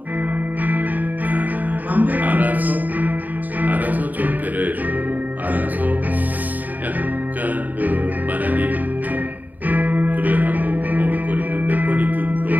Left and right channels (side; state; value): left; late; 0.083 ms